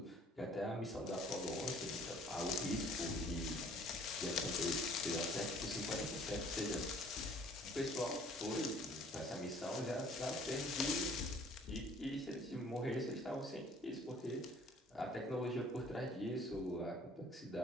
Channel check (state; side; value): normal; both; correlation 0.55